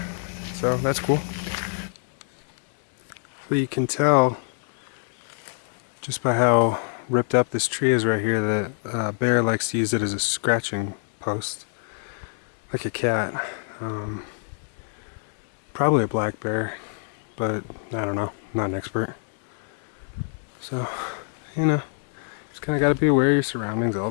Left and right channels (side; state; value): right; silent; digital silence